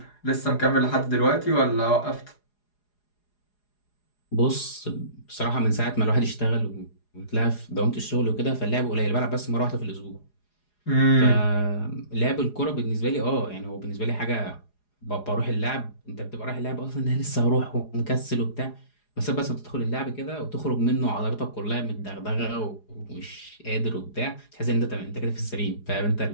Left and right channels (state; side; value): late; right; 4.8 ms